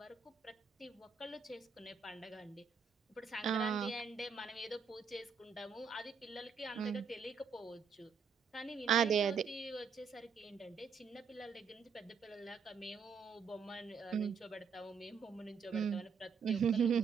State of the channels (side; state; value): left; quieter; 5.9 dB